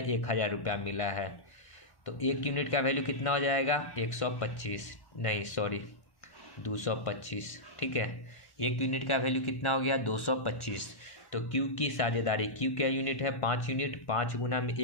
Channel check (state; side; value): late; right; 1.1 ms